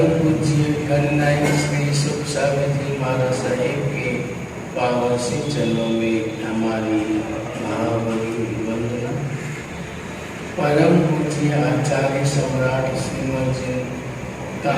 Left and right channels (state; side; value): identical; both; correlation 1.00